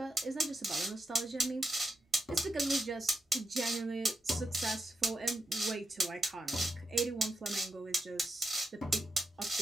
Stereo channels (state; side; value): normal; both; correlation 0.85